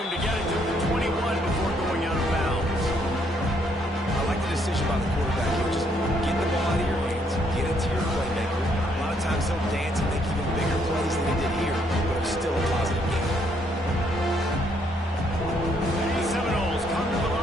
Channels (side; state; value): both; normal; correlation 0.70